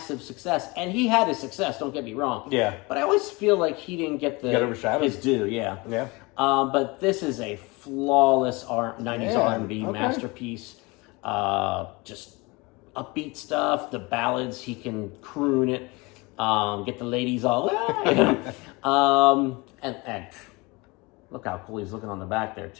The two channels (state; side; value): quieter; right; 25.4 dB